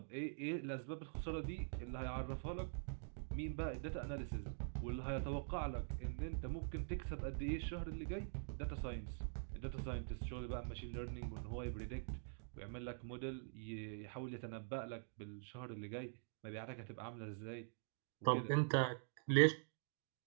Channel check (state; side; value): silent; left; digital silence